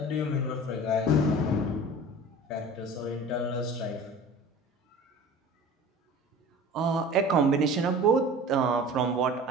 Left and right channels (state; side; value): normal; both; correlation 0.40